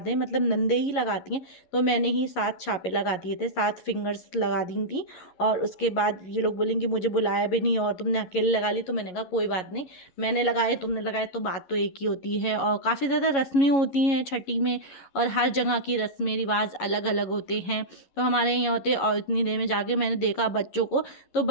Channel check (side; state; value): right; late; 11 ms